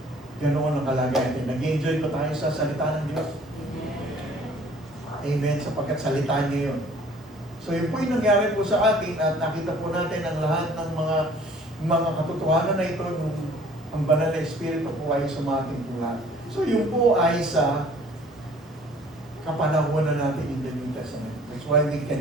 ganoon ang kalagayan. Nag-enjoy ko tayo sa salita ng Diyos. Amen. Sapagkat salita niya yun. So yun po yung nangyari po sa atin at nakita po natin ang lahat ng mga katotohanan na ito nung ang banal na Espiritu po ay sumating po lahat. So yun po ay sa kapanahunan natin in the New Testament. That's why we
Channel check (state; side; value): normal; both; correlation 0.53